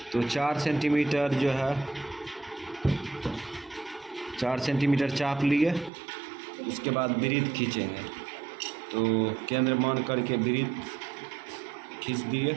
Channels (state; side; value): drops out; left; at 5.9 s